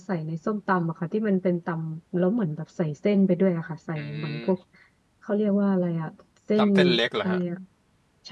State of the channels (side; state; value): both; identical; correlation 1.00